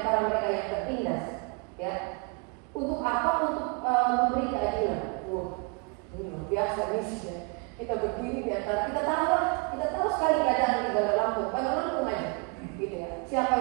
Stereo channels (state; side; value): quieter; left; 31.3 dB